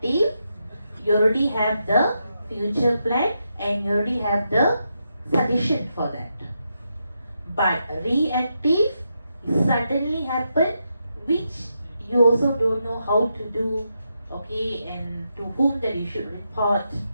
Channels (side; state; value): both; inverted; correlation -0.84